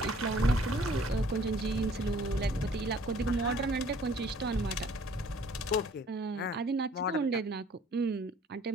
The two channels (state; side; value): normal; both; correlation 0.56